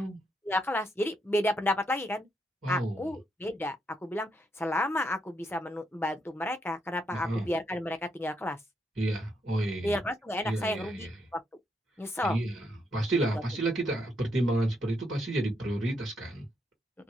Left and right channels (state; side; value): normal; both; correlation 0.78